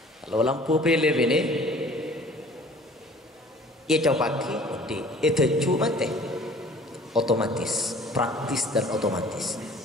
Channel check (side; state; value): both; normal; correlation 0.50